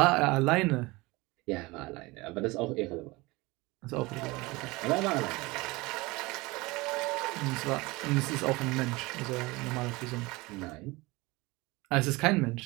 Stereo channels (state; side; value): quieter; left; 22.7 dB